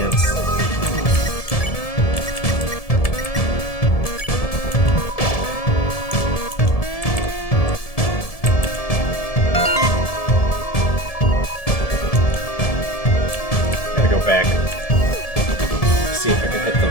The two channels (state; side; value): late; right; 1.7 ms